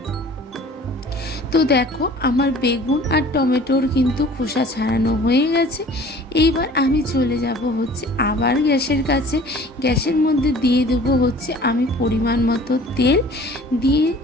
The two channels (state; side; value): normal; both; correlation 0.48